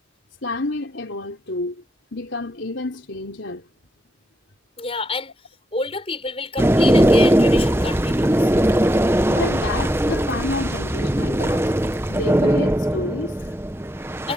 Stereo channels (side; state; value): both; normal; correlation 0.81